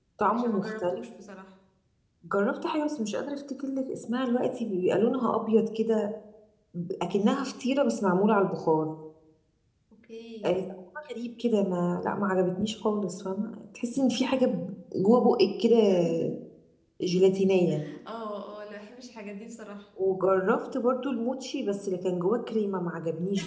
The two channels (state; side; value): identical; both; correlation 1.00